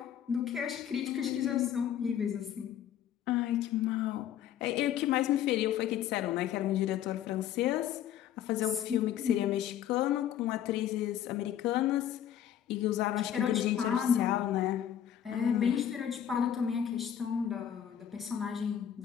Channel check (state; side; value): quieter; right; 10.2 dB